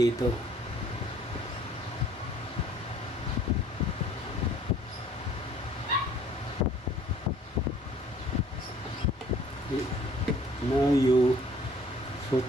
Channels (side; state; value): both; normal; correlation 0.55